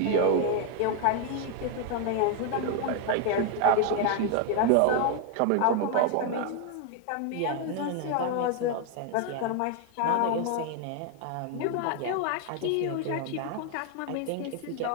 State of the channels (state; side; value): different; both; correlation 0.00